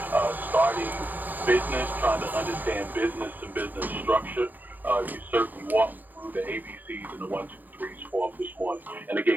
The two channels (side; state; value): left; late; 0.087 ms